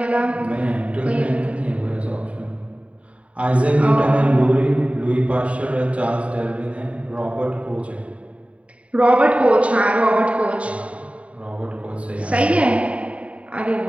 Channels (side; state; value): left; late; 0.064 ms